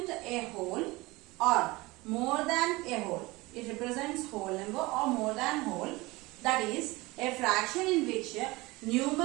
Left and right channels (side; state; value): left; quieter; 22.0 dB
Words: a whole or more than a whole. It represents whole number or more than whole. That is a fraction in which